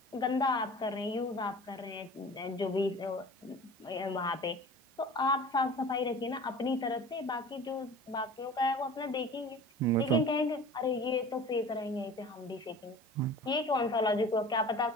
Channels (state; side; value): normal; both; correlation 0.40